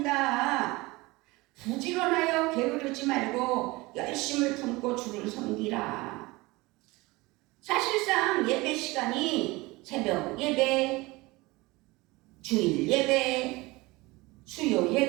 부지런하여 게으르지 말고 열심을 품고 주를 섬기라. 사실상 예배 시간이 새벽 예배, 주일 예배, 수요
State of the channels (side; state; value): left; quieter; 22.3 dB